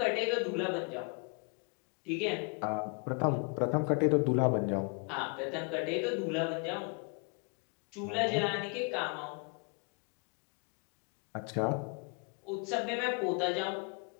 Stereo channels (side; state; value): right; quieter; 35.8 dB